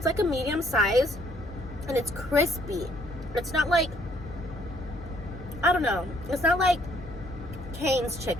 like a medium size, and it's crispy. It's not like, I don't know, it's not like Cane's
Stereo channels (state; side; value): normal; both; correlation 0.65